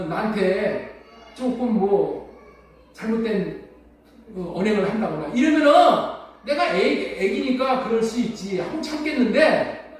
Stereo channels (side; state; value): both; identical; correlation 1.00